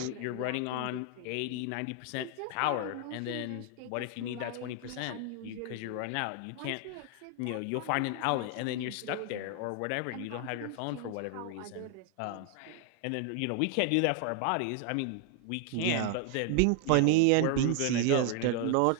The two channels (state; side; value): different; both; correlation 0.00